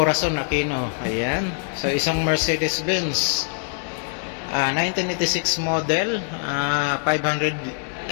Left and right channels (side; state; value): right; silent; 63 dB below the other